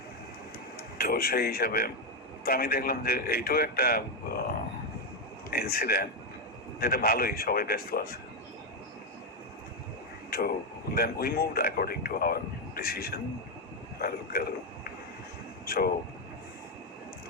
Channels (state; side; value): normal; both; correlation 0.04